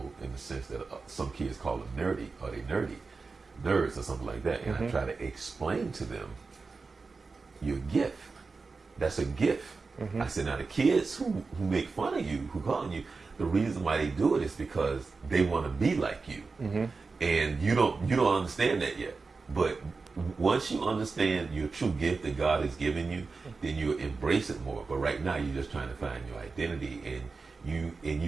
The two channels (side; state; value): left; quieter; 4.3 dB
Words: in the sense that some kids call them nerdy, or they nerds or something like that. And I try to explain to them your gift. That's a gift. I said, now the kids who make fun of you, who call you, the reason why they do it is because they want to be like you. And you don't understand that yet. But once you understand your true gift that God has given you, then you embrace it more. But right now you're just trying to find your identity, and